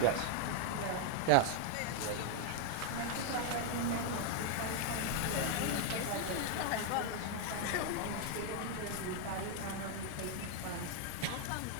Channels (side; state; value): both; different; correlation 0.01